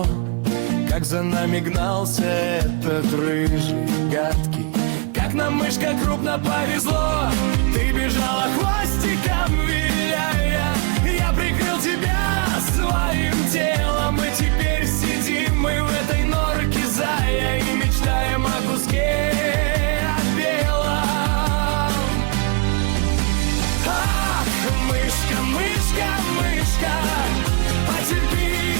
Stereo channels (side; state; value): left; quieter; 33.9 dB